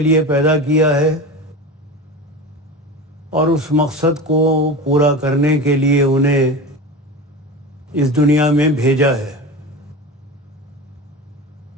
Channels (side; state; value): both; normal; correlation 0.28